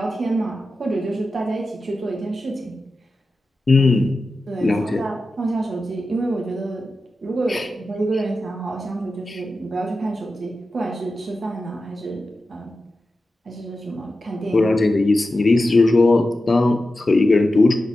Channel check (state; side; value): normal; both; correlation 0.92